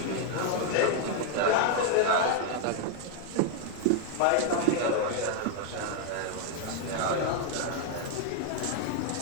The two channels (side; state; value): both; different; correlation 0.00